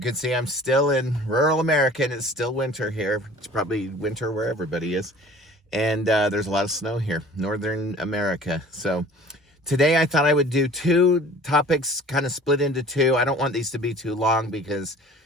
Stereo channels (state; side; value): normal; both; correlation 0.46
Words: see, I'm still in rural America and it's still winter here. It's probably winter where everybody is. And there's a lot of snow here, northern America. So today I thought I would do two topics kind of split into two. I don't want these to be too long because